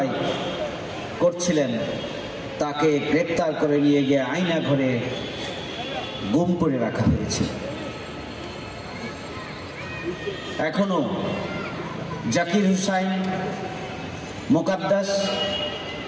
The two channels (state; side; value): identical; both; correlation 1.00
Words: করছিলেন, তাকে গ্রেপ্তার করে নিয়ে গিয়ে আয়না ঘরে গুম করে রাখা হয়েছে। এখনো জাকির হুসাইন, মোকাদ্দাস